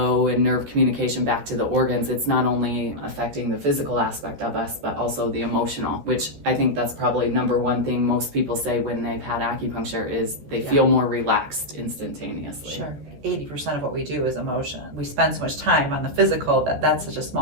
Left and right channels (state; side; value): late; left; 14 ms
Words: and nerve communication back to the organs, it's not only affecting the physical aspect of us, but also the emotional, which I think that's probably number one thing most people say when they've had acupuncture is they feel more relaxed instantaneously. Sure. 80% of what we do is emotion. We spend so much time on the physical that's such a